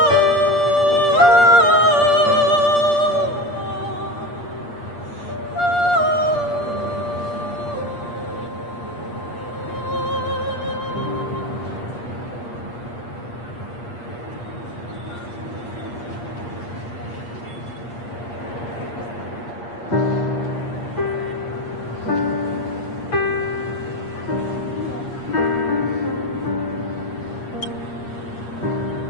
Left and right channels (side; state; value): right; late; 8.5 ms